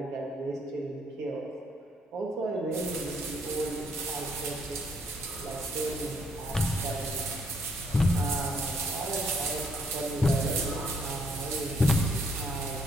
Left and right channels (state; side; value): normal; both; correlation 0.69